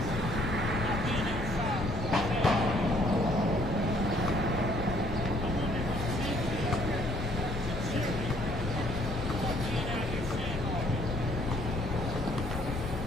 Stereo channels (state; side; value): normal; both; correlation 0.63